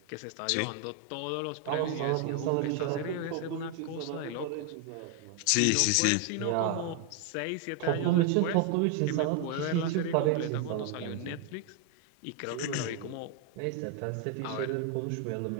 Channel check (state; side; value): different; both; correlation 0.01